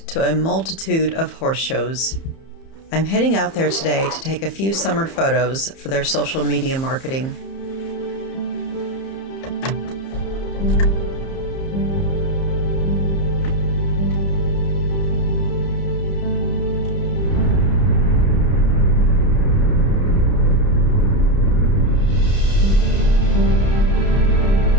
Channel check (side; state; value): right; late; 30 ms